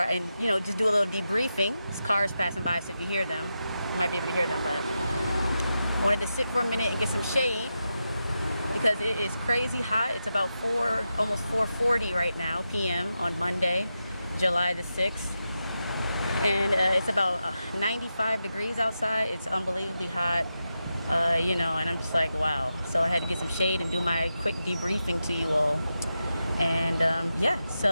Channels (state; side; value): inverted; both; correlation -0.89